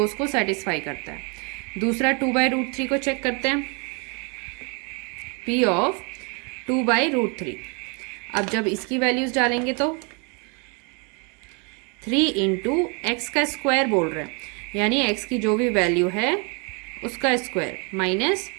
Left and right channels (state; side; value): quieter; left; 33.9 dB